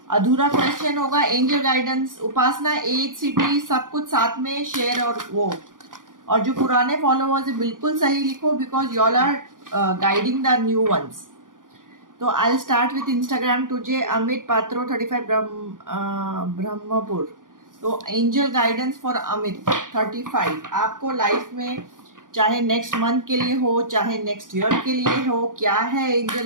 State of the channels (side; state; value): left; late; 0.89 ms